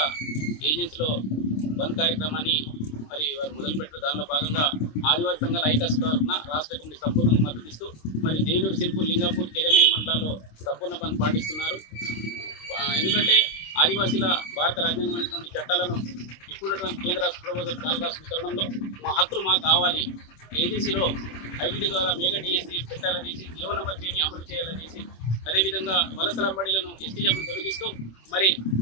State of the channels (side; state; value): right; late; 26 ms